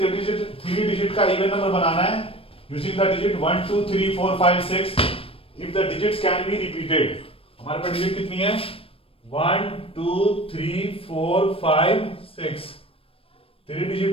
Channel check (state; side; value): late; right; 0.27 ms